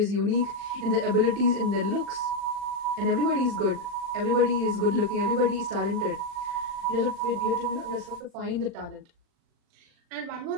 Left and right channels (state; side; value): late; left; 40 ms